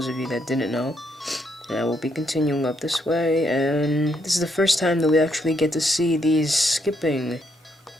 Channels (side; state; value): both; normal; correlation 0.75